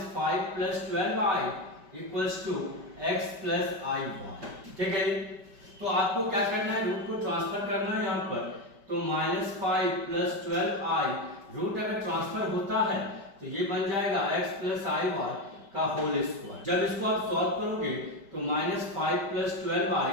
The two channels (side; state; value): left; late; 5.1 ms